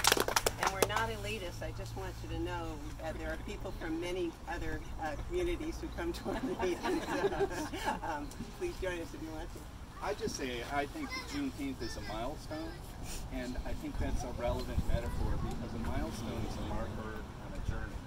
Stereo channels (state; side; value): identical; both; correlation 1.00